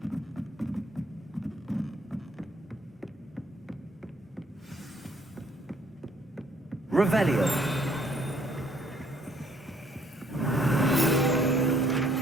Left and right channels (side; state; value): both; normal; correlation 0.64